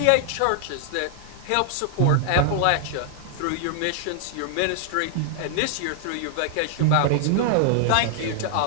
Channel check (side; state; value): both; different; correlation 0.00